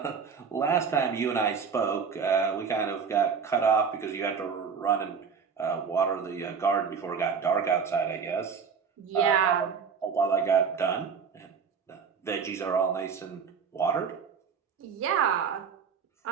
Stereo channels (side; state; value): left; quieter; 6.1 dB